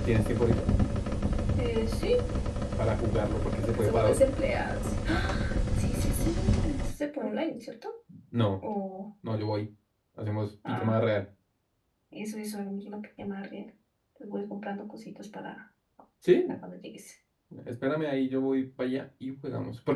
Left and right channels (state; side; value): identical; both; correlation 1.00